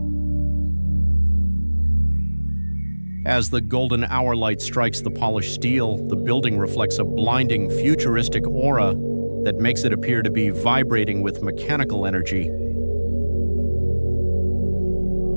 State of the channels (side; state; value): both; inverted; correlation -1.00